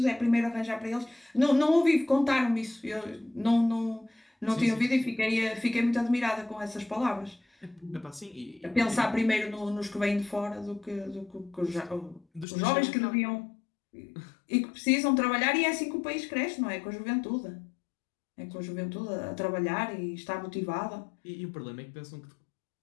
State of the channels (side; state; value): right; drops out; at 12.5 s